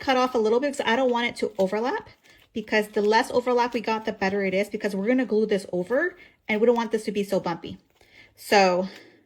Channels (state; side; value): identical; both; correlation 1.00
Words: off a little bit because I don't want it to overlap, because the less overlap we got, the better it is, because we're gonna glue this over, and we don't want this to be so bumpy. So